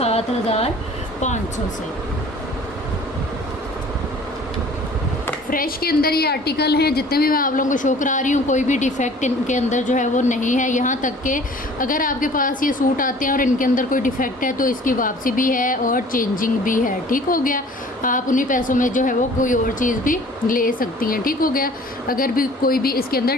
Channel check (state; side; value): normal; both; correlation 0.49